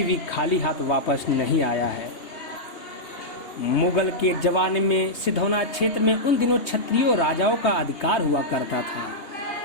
भी खाली हाथ वापस नहीं आया है। मुगल के जमाने में सिधौना क्षेत्र में उन दिनों क्षत्रियों राजाओं का अधिकार हुआ करता था।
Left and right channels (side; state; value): right; late; 3.2 ms